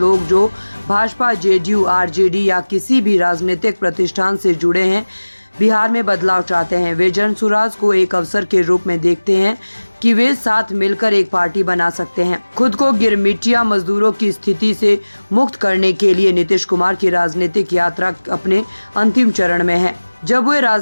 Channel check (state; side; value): inverted; both; correlation -1.00